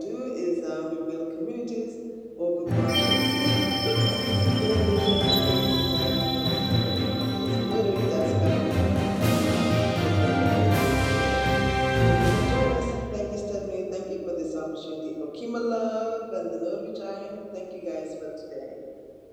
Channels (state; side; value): identical; both; correlation 1.00